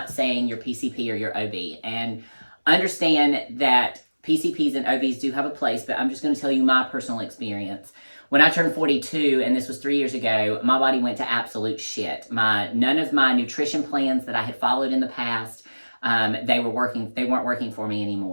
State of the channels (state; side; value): inverted; both; correlation -1.00